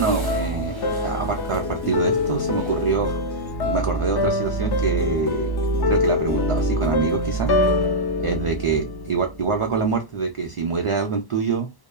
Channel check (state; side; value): late; right; 1.1 ms